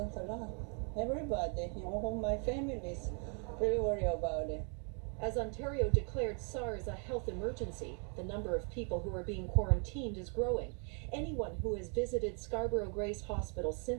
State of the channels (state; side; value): quieter; left; 39.1 dB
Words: a lot. Everybody, my family is really worried about it. As Ontario declared SARS a health emergency, the number of people who are being quarantined is growing. Anyone who has visited Scarborough Grace Hospital